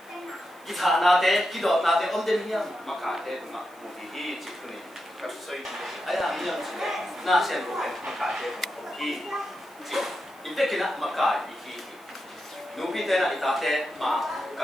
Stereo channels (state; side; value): noise; right; hiss, 28 dB below the sound